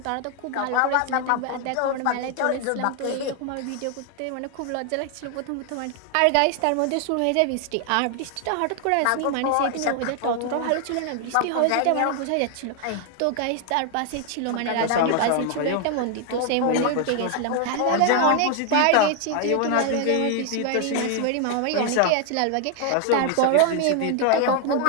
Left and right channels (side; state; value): both; different; correlation 0.00